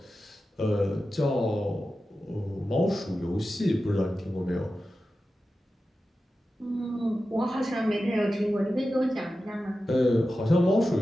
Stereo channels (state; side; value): normal; both; correlation 0.93